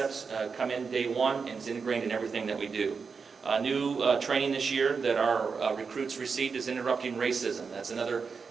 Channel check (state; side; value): quieter; left; 5.3 dB